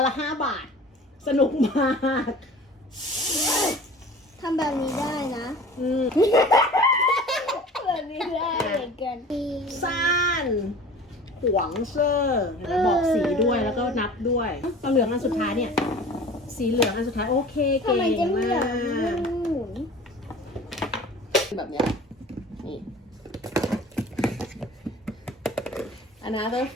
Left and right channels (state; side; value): normal; both; correlation 0.42